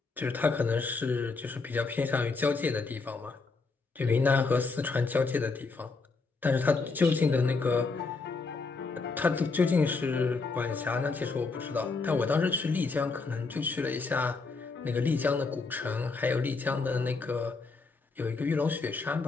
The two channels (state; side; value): quieter; right; 4.1 dB